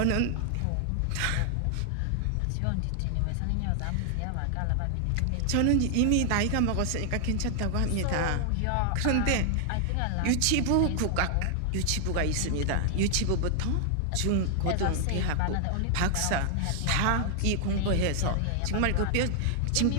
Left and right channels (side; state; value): both; different; correlation 0.00